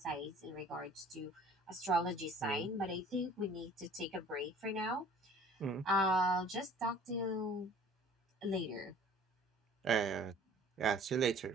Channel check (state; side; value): normal; both; correlation 0.50